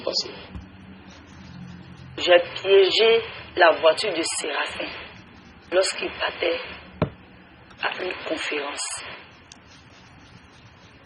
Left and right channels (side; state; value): both; identical; correlation 1.00